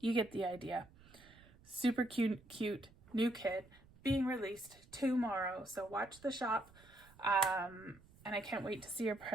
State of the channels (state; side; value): noise; right; rumble, 25 dB below the sound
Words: get the idea. Super cute new kit being released tomorrow. So watch the shop. And I can't wait to see your